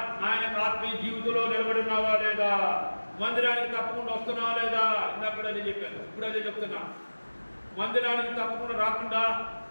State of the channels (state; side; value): inverted; both; correlation -1.00